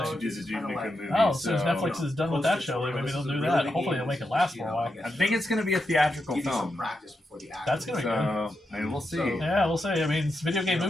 do the Duke Nukem movie. Oh, since Netflix is done with that show, maybe they'll do that. Hopefully, they'll make it last for a while. I think it's going to be a theatrical film. That's gonna be good. So I mean, we'll see. Yeah, we'll see. I mean, video game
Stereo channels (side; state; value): both; normal; correlation 0.86